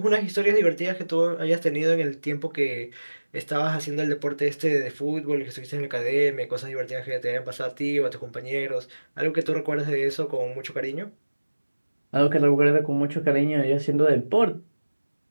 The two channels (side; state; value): both; inverted; correlation -1.00